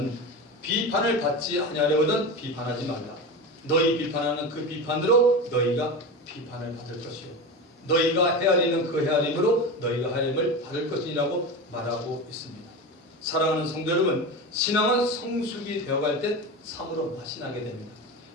비판을 받지 아니하려거든 비판하지 말라. 너희 비판하는 그 비판으로 너희가 비판을 받을 것이요 너희가 헤아리는 그 헤아림으로 너희가 헤아림을 받을 것이라고 말하고 있습니다. 사랑하는 성도 여러분, 신앙은 성숙이 되어갈 때 참으로 맛이 나게 됩니다.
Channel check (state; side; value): normal; both; correlation 0.24